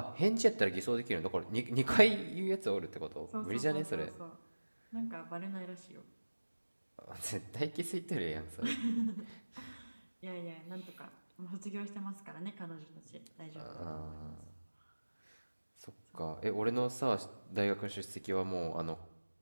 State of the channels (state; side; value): inverted; both; correlation -1.00